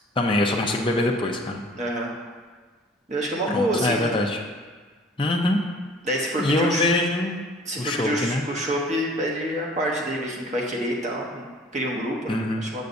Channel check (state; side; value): normal; both; correlation 0.51